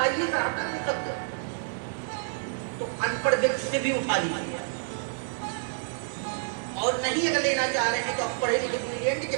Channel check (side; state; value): left; silent; digital silence